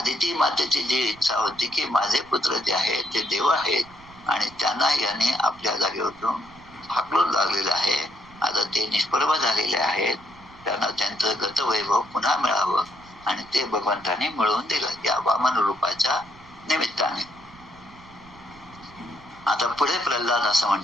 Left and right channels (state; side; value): noise; right; rumble, 24 dB below the sound